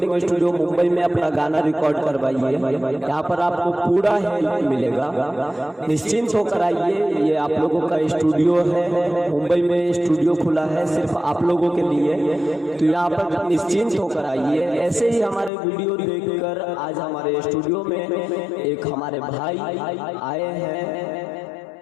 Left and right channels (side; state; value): right; drops out; at 15.5 s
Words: स्टूडियो मुंबई में अपना गाना रिकॉर्ड करवाइए। यहाँ पर आपको पूरा हेल्प मिलेगा, निश्चिंत होकर आइए। ये आप लोगों का स्टूडियो है, मुंबई में स्टूडियो खुला है सिर्फ आप लोगों के लिए, तो यहाँ पर निश्चिंत होकर आइए। ऐसे ही हमारे वीडियो देखकर आज हमारे स्टूडियो में एक हमारे भाई आए हैं